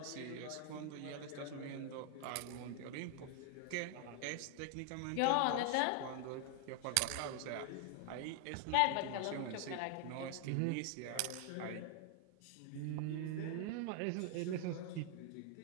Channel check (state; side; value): different; both; correlation 0.00